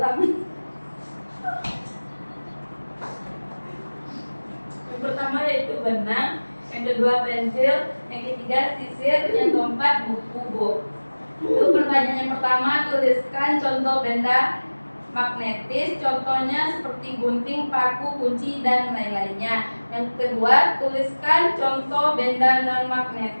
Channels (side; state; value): both; inverted; correlation -1.00